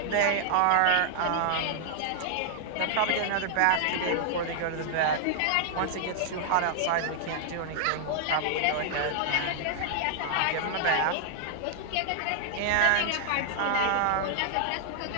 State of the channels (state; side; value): different; both; correlation -0.01